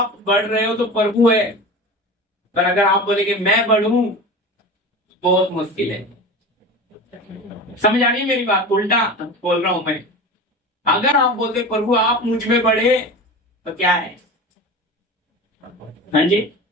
बढ़ रहे हो तो प्रभु है, पर अगर आप बोले कि मैं बढ़ूं, बहुत मुश्किल है। समझ आ रही है मेरी बात? उल्टा बोल रहा हूं मैं। अगर आप बोलते प्रभु आप मुझ में बढ़े तो क्या है? हाँ जी,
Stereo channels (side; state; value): both; normal; correlation 0.32